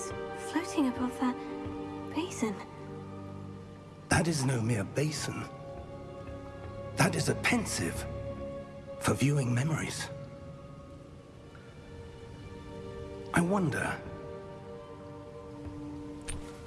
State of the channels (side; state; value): both; identical; correlation 1.00